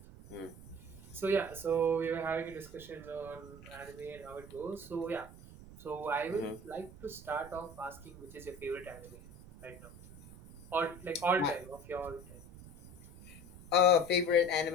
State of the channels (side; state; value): right; noise; rumble, 17 dB below the sound